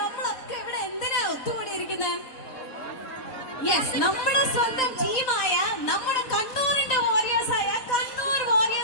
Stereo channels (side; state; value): right; late; 3.9 ms